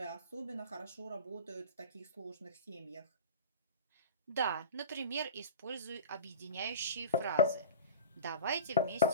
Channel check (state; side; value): inverted; both; correlation -0.32